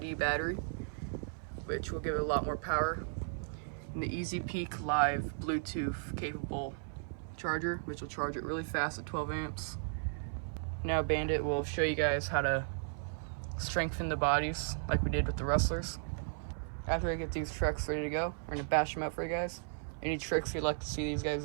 battery, which will give it a lot more power. And the Easy Peak Live Bluetooth capable charger, which will charge it really fast at 12 amps. Now Bandit will show you guys how to strengthen the bodies like we did with the Rustlers. After I get these trucks ready to go, we're gonna bash them out for you guys. Any tricks you'd like to see these guys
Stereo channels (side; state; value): left; silent; 54 dB below the other